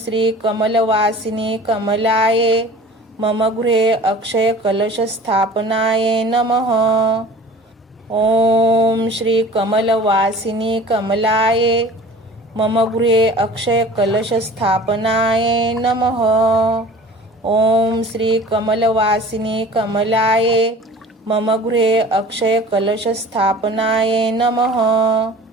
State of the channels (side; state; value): both; normal; correlation 0.43